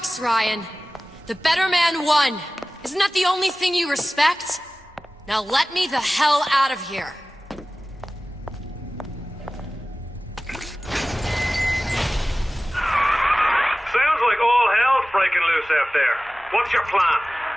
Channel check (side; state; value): both; normal; correlation 0.97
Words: Ryan. The better man won. Isn't that the only thing you respect? Now let me the hell out of here. Sounds like all hell's breaking loose out there. What's your plan?